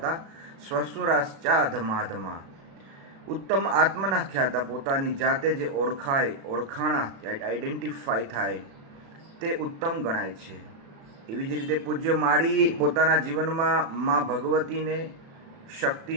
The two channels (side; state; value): left; late; 36 ms